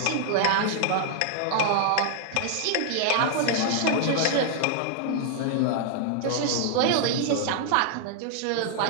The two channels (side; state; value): both; different; correlation 0.00